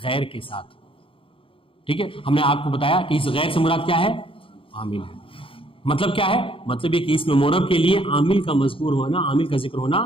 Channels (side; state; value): right; late; 0.26 ms